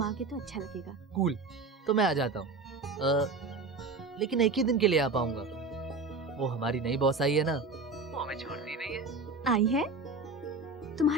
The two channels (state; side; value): quieter; left; 3.6 dB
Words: आओगे तो अच्छा लगेगा। कूल, तो मैं आ जाता हूँ। लेकिन एक ही दिन के लिए आ पाऊंगा। वो हमारी नई बॉस आई है ना, वो हमें छोड़ती नहीं है। आई है?